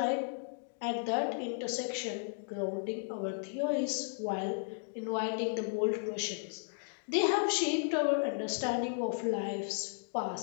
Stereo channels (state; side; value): silent; right; digital silence